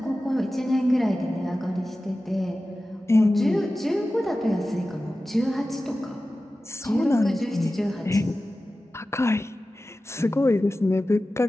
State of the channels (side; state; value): both; normal; correlation 0.95